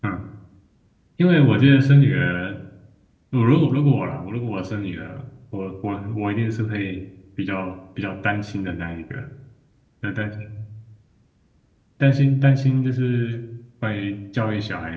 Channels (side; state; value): both; identical; correlation 1.00